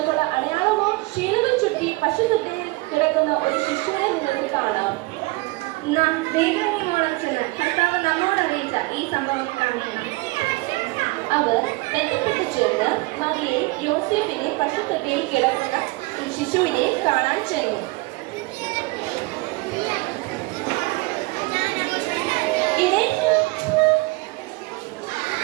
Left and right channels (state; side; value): quieter; left; 23.9 dB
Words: അടയാളമോ ശീലകൾ ചുറ്റി പശുത്തൊട്ടിയിൽ കിടക്കുന്ന ഒരു ശിശുവിനെ നിങ്ങൾക്ക് കാണാം. നാം ദൈവമോളം ചെന്ന് കർത്താവ് നമ്മോട് അറിയിച്ച ഈ സംഭവം കാണുന്നു. അവർ ബന്ധപ്പെട്ട് ചേർന്ന് മറിയെ യോസേഫിനെ പശുത്തൊട്ടിയിൽ കിടക്കുന്ന ശിശുവിനെ കാണാൻ ചെന്നു.